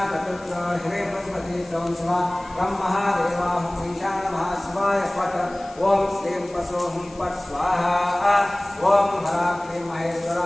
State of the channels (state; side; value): noise; left; hiss, 24 dB below the sound